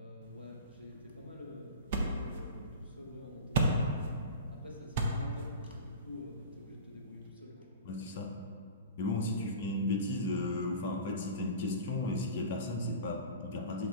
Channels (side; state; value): both; inverted; correlation -0.34